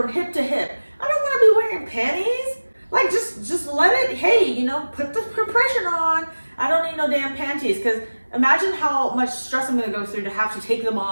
hip to hip. I don't want to be wearing panties. Like, just let it, hey, put the compression on. I don't need no damn panties, because imagine how much stress I'm going to go through to have to take them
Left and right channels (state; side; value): inverted; both; correlation -1.00